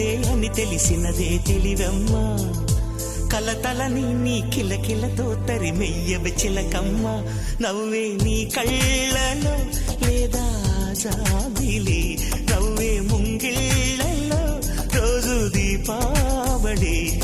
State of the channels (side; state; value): both; identical; correlation 1.00